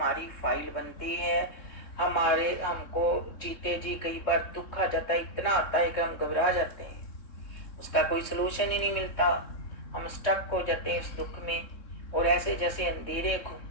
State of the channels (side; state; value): right; late; 3.6 ms